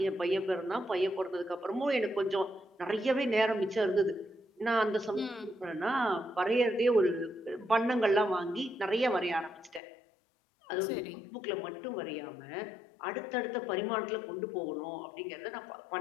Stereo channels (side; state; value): right; drops out; at 9.8 s